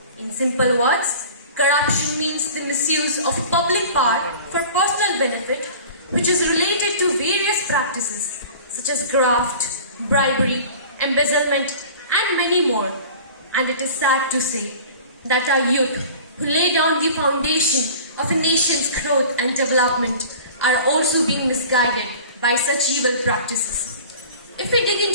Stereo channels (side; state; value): both; inverted; correlation -0.42